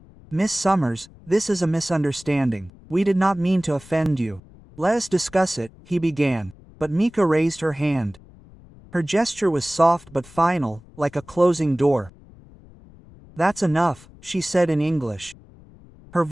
Miss Summers, this is a misunderstanding. We did not mean to offend you. Let us discuss it, he began, but Mika raised her hand. Her gesture was soft but final, like a closing door. That's enough, she said in English. Her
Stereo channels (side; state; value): left; noise; rumble, 23 dB below the sound